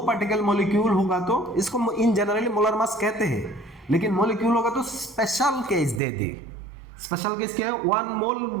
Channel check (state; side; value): drops out; left; at 6.0 s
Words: पार्टिकल मॉलिक्यूल होगा तो इसको इन जनरली मोलर मास कहते हैं, लेकिन मॉलिक्यूल होगा तो स्पेशल केस दे दी। स्पेशल केस क्या है, 1